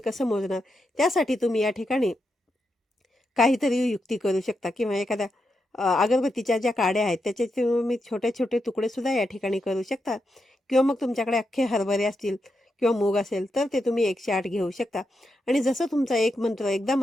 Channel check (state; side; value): normal; both; correlation 0.85